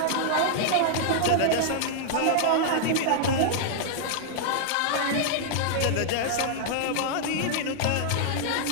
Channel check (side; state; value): both; different; correlation -0.01